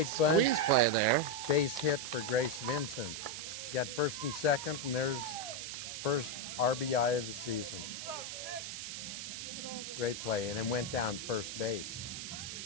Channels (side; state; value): right; noise; hiss, 7 dB below the sound